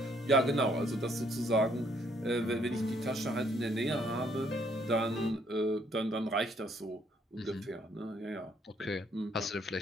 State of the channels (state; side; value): normal; both; correlation 0.67